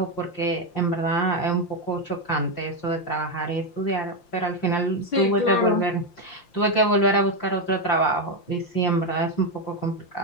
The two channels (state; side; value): late; right; 5.7 ms